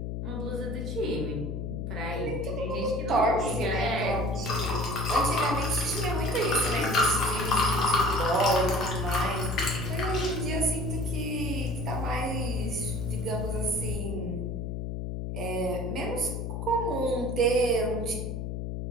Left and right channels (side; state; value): left; noise; hum, 4 dB below the sound